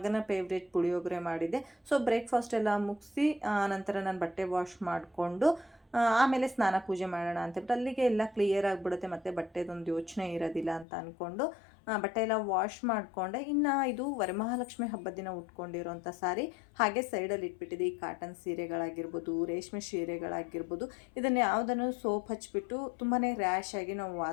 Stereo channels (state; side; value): drops out; right; at 10.9 s